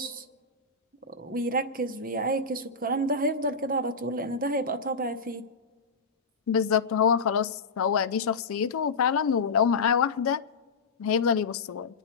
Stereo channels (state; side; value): quieter; right; 4.2 dB